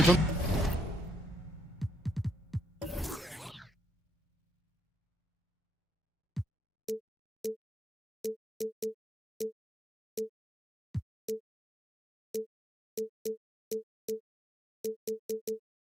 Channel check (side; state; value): both; normal; correlation 0.75